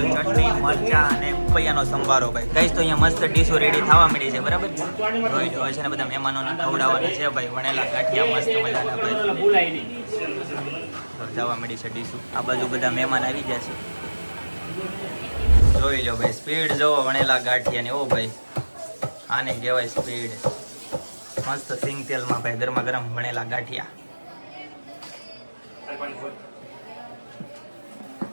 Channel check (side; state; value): both; inverted; correlation -1.00